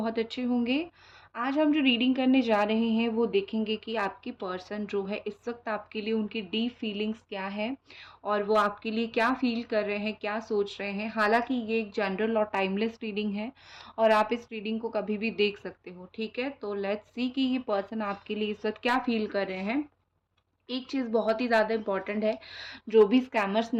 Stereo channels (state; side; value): identical; both; correlation 1.00